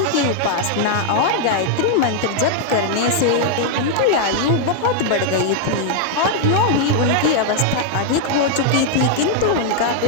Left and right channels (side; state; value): both; different; correlation -0.01